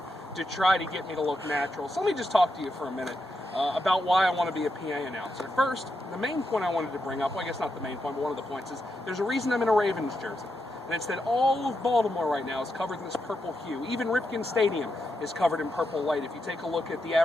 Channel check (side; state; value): both; normal; correlation 0.84